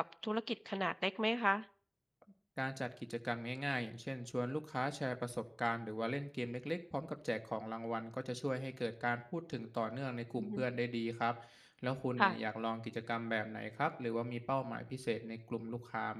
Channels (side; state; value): both; identical; correlation 1.00